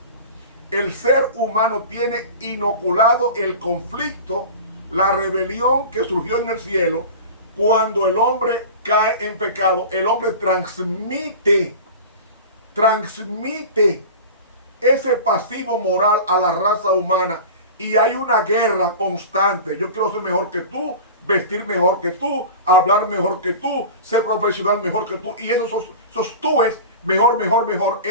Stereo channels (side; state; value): both; inverted; correlation -0.34